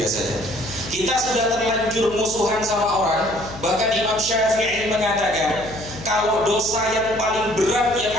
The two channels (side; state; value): left; noise; hum, 14 dB below the sound